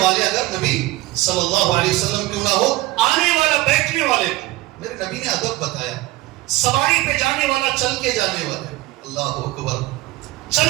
اگر نبی صلی اللہ علیہ وسلم کیوں نہ ہو, آنے والا بیٹھنے والے کو میرے نبی نے ادب بتایا. سواری پہ جانے والا چل کے جانے والے, اللہ اکبر,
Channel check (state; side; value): quieter; left; 18.9 dB